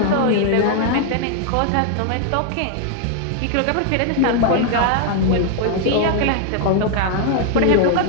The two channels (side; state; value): both; different; correlation 0.00